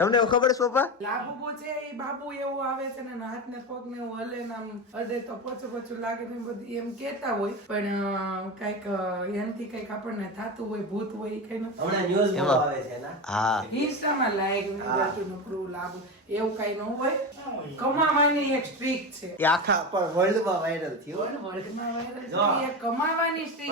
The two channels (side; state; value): both; normal; correlation 0.21